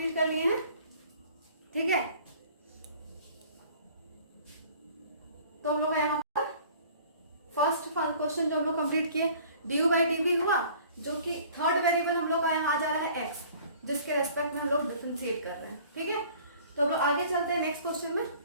कर लिए हैं। ठीक है, तो हम लोग यहाँ पर फर्स्ट क्वेश्चन जो हम लोग कंप्लीट किए, du by dv हुआ, जो कि थर्ड वेरिएबल हम लोग का यहाँ आ जा रहा है x, जिसके रेस्पेक्ट में हम लोग डिफरेंशिएट कर रहे हैं। ठीक है, तो हम लोग आगे चलते हैं नेक्स्ट क्वेश्चन में।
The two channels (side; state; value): both; inverted; correlation -0.51